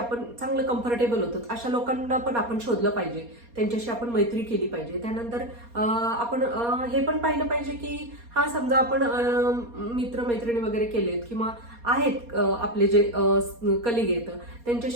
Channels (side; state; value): left; late; 4.2 ms